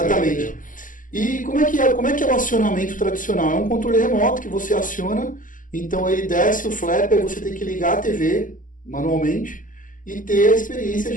E como é que é o acionamento tradicional? É um controle remoto que você aciona, então ele desce o flap, aí você tem que ligar a TV manualmente e ter a experiência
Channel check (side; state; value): right; late; 0.38 ms